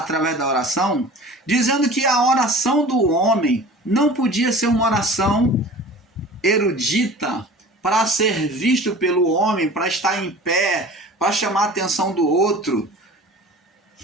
da oração, dizendo que a oração do homem não podia ser uma oração erudita para ser visto pelo homem, para estar em pé, para chamar a atenção do outro.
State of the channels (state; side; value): normal; both; correlation 0.41